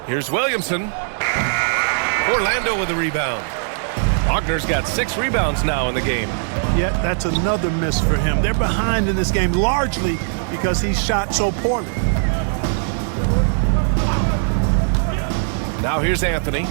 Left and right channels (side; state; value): left; silent; digital silence